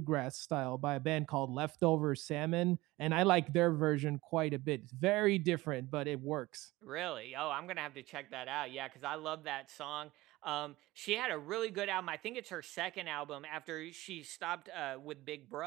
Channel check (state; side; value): quieter; left; 19.5 dB